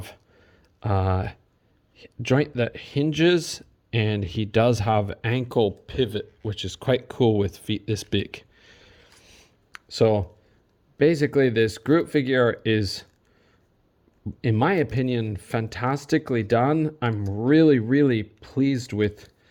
a joint that hinges, and he does have ankle pivot, which is quite cool with feet this big. So basically this Groot figure is, in my opinion, fantastically done. I'm really, really pleased with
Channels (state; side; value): identical; both; correlation 1.00